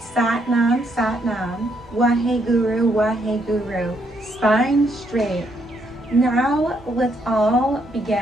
Satnam, Satnam, Waheguru, Waheguru, spine straight. Now let's all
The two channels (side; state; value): both; normal; correlation 0.74